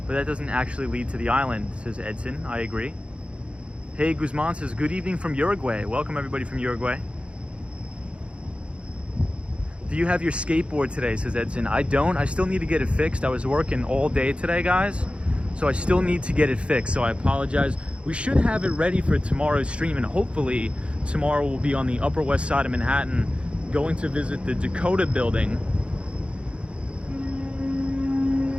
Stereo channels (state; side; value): late; left; 0.059 ms